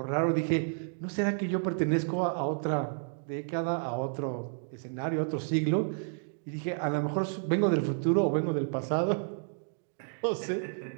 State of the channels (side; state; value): left; silent; digital silence